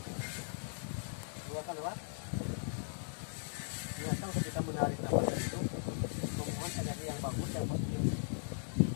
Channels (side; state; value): right; silent; digital silence